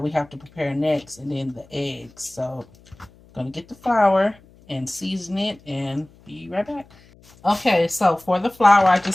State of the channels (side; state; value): left; noise; hum, 27 dB below the sound